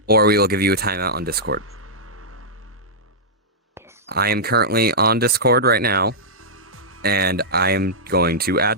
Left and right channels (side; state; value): both; normal; correlation -0.11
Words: or we will give you a timeout on Discord. I am currently on Discord right now, and I am going to